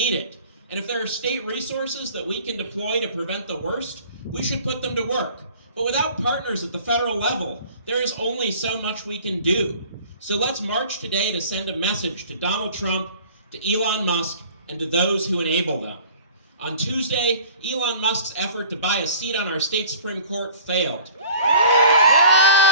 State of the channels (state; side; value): inverted; both; correlation -0.47